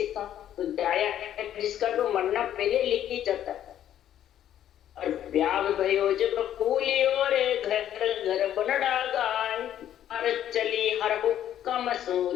का तो जाया जिसका तो मरना पहले लिखी जाता है। और ब्याह भयो जब फूलियो रे घर घर बनड़ा गाय, हर चली हर हुक्म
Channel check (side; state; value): right; quieter; 11.1 dB